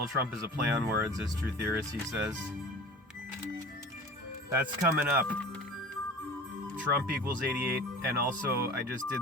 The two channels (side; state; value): both; normal; correlation 0.39